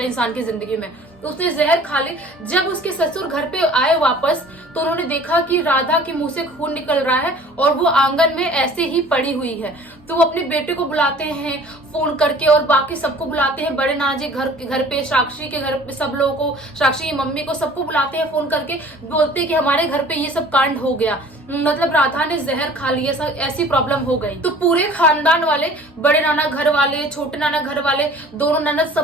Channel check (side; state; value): both; normal; correlation 0.48